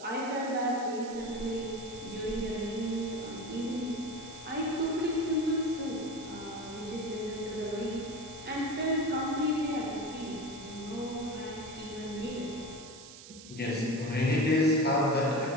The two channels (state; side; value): noise; right; hiss, 16 dB below the sound